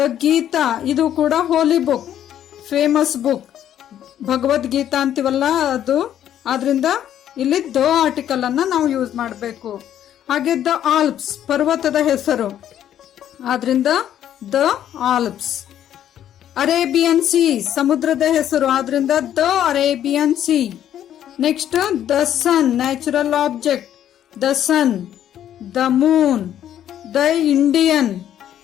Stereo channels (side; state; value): right; quieter; 10.8 dB